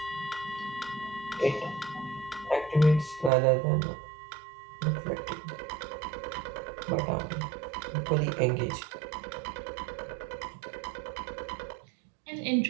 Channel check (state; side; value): drops out; left; at 3.3 s